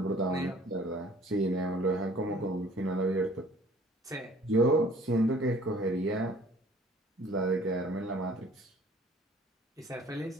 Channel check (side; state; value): both; normal; correlation 0.53